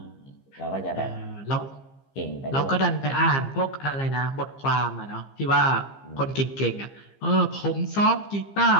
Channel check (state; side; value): late; right; 15 ms